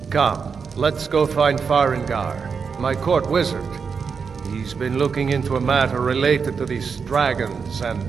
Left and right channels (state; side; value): quieter; left; 5.8 dB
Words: Come, let's go find Farengar, my court wizard. He's been looking into a matter related to these dragons and